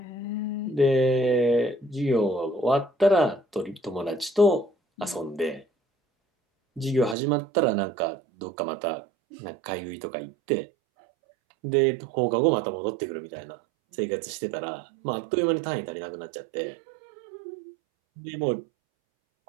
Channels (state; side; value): drops out; left; at 7.2 s